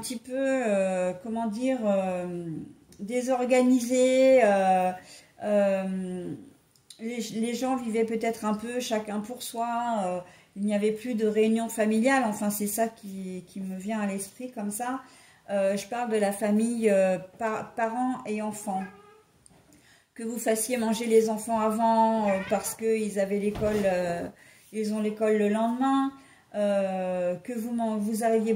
peu comment dire désorganisés, les gens vivaient peut-être un peu chacun pour soi, il n'y avait plus de réunion familiale, enfin c'est ça qui me vient à l'esprit comme ça. Je parle de la famille parents et enfants. Que vous fassiez manger les enfants avant parce qu'ils avaient l'école, ils ont l'école le lendemain, que vous arriviez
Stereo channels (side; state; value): both; identical; correlation 1.00